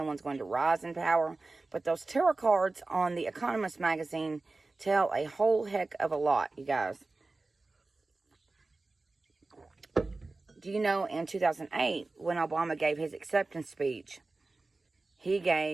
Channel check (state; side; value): quieter; left; 3.4 dB